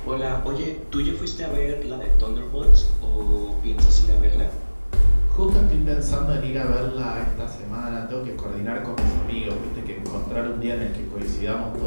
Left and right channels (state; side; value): inverted; both; correlation -1.00